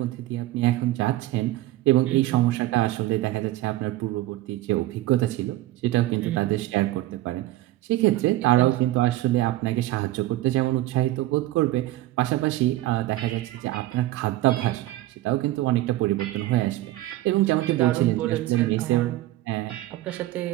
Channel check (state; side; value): quieter; left; 16.4 dB